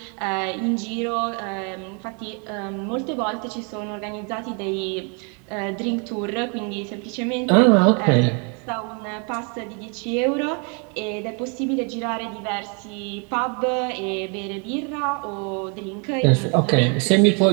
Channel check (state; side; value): quieter; left; 36.3 dB